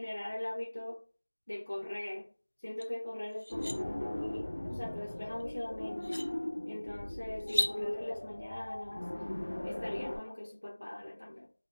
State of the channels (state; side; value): inverted; both; correlation -1.00